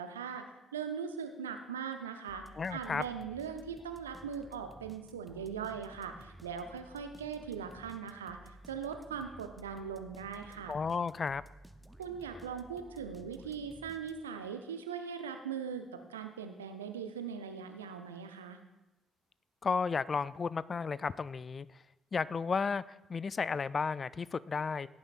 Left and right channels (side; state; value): both; normal; correlation 0.48